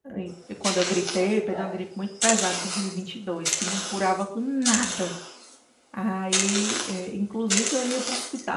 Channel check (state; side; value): identical; both; correlation 1.00